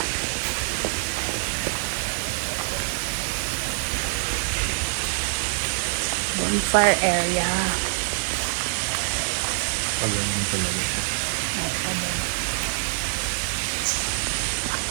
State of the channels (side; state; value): left; silent; digital silence